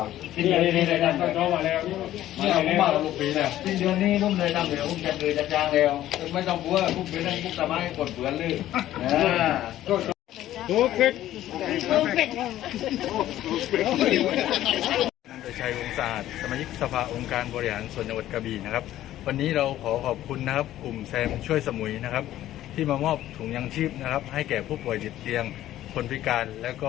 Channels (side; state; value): right; quieter; 13.4 dB